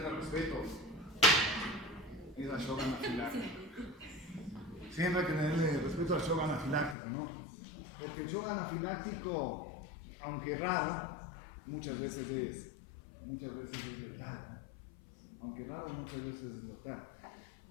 el respeto es al shock anafiláctico. Siempre hay que tenerle respeto al shock anafiláctico, ¿no? Porque el shock anafiláctico, aunque raro, muchas veces es letal. Aunque raro, muchas veces es letal.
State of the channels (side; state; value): right; drops out; at 7.0 s